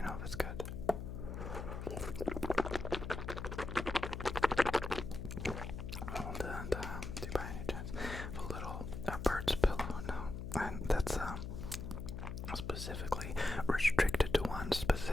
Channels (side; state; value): left; noise; hum, 6 dB below the sound